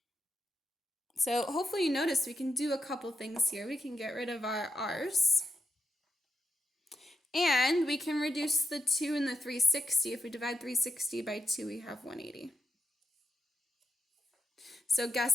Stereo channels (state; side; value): normal; both; correlation 0.84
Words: So hopefully you notice we can do a couple things here. We can get rid of our r's. And we can reduce the 2 and the 360. If we divide 360 by 2, we have 180. So